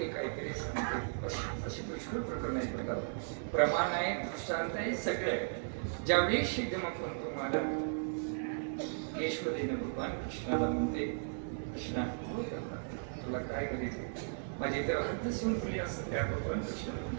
काहीतरी सांगते. अशी पुष्कळ प्रकरण आहे बघा, प्रमाण आहे, दृष्टांत आहे, सगळे आहे. ज्यावेळेस एकदम आपण तुम्हाला ईश्वरीनं भगवान कृष्णाला म्हणते, कृष्णा तुला काय करायचं, माझी तर हद्द संपली असं त्या भगवान कृष्ण.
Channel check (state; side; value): silent; left; 54 dB below the other